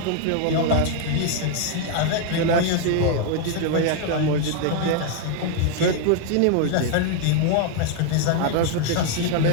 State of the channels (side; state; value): both; different; correlation 0.00